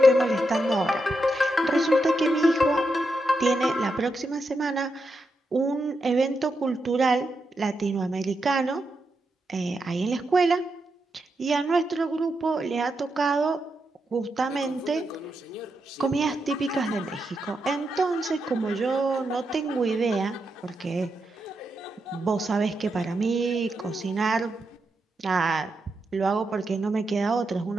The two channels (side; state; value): both; normal; correlation 0.85